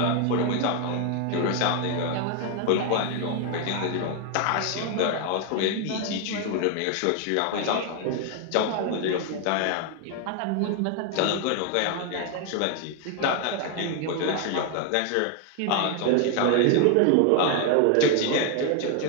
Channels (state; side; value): different; both; correlation 0.01